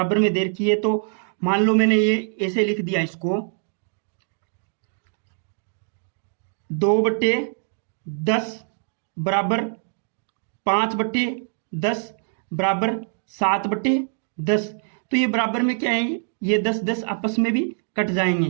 में दे रखी है। तो मान लो मैंने ये ऐसे लिख दिया, इसको 2/10 बराबर 5/10 बराबर 7/10। तो ये बराबर में क्या है, ये 10 आपस में भी कट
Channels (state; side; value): silent; left; digital silence